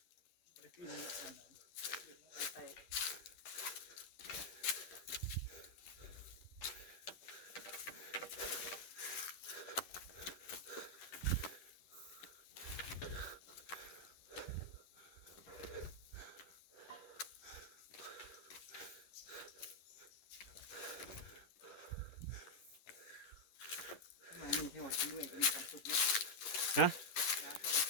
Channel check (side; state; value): right; late; 11 ms